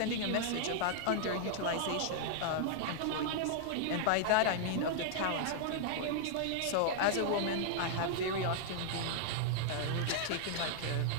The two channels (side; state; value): both; different; correlation -0.01